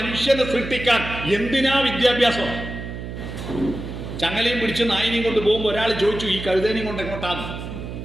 സൃഷ്ടിക്കാൻ എന്തിനാ വിദ്യാഭ്യാസം? ചങ്ങലയും പിടിച്ച് നായിനെയും കൊണ്ട് പോകുമ്പോൾ ഒരാൾ ചോദിച്ചു ഈ കഴുതേനെയും കൊണ്ട് എങ്ങോട്ടാന്ന്.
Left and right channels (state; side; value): noise; right; hum, 8 dB below the sound